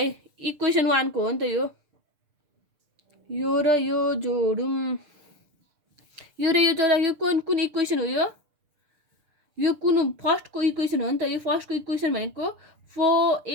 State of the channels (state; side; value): late; left; 6.7 ms